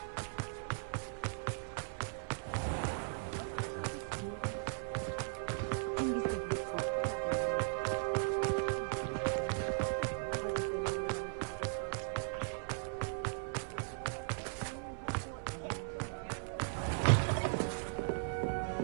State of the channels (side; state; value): left; silent; digital silence